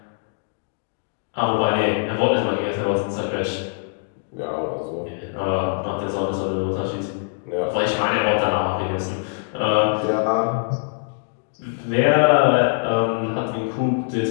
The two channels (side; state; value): right; silent; digital silence